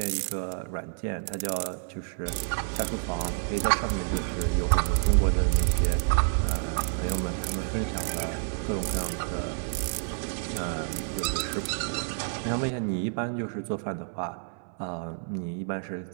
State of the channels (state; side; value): silent; left; 58 dB below the other